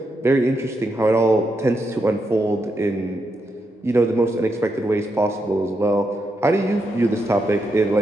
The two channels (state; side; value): normal; both; correlation 0.83